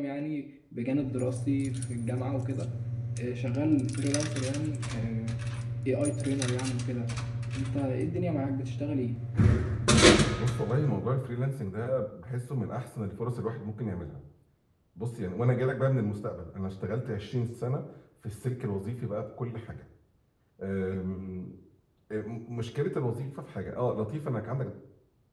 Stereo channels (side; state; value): both; identical; correlation 1.00